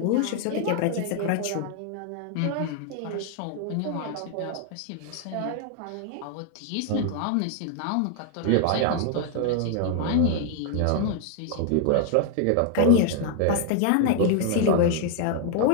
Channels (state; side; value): different; both; correlation 0.00